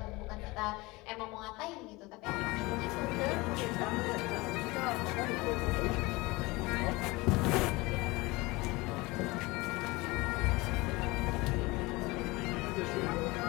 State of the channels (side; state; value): right; quieter; 22.7 dB